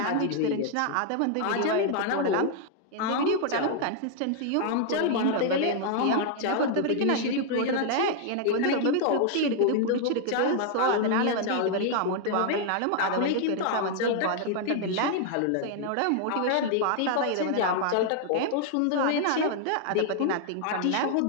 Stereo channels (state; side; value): different; both; correlation 0.00